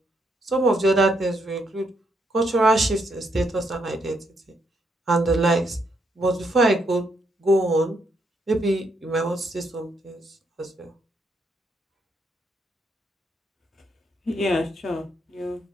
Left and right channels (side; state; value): both; normal; correlation 0.76